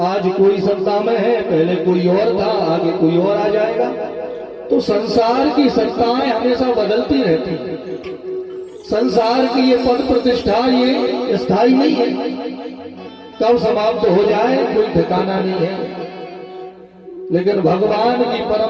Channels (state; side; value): identical; both; correlation 1.00